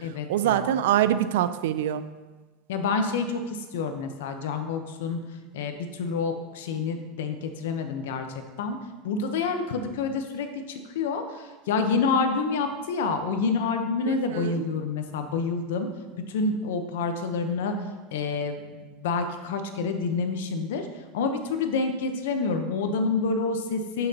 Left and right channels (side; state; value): both; normal; correlation -0.16